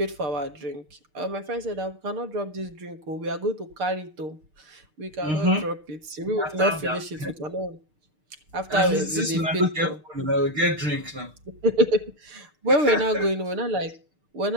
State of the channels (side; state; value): left; late; 6.6 ms